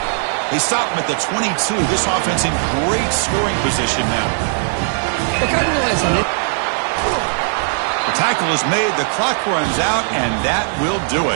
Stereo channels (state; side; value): silent; left; digital silence